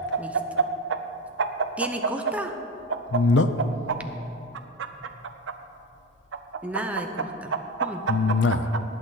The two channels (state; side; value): normal; both; correlation 0.23